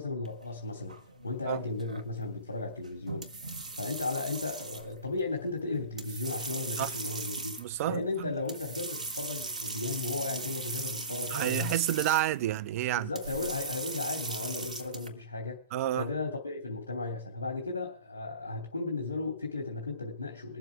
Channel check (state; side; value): inverted; both; correlation -0.40